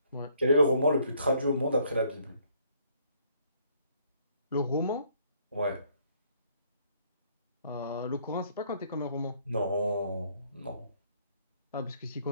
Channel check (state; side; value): inverted; both; correlation -0.66